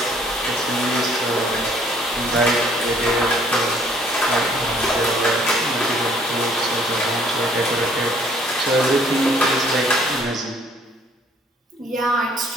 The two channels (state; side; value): normal; both; correlation 0.61